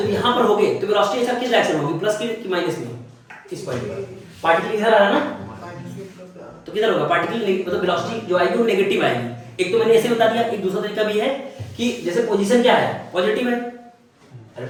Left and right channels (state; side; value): identical; both; correlation 1.00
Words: यहां पर होगे तो वेलोसिटी ऐसा किस डायरेक्शन में होगी? प्लस की माइनस में? इस पॉइंट पर पार्टिकल इधर आ रहा है ना, तो किधर होगा? पार्टिकल मतलब वेलोसिटी जो आएगी वो नेगेटिव आएगी। एक तो मैंने ऐसे बता दिया, एक दूसरा तरीका भी है कि जैसे पोजीशन क्या है? पॉजिटिव है। अरे